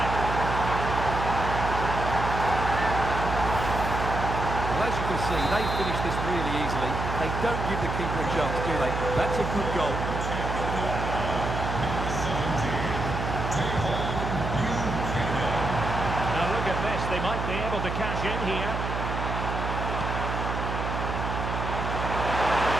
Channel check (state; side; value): noise; right; hum, 3 dB below the sound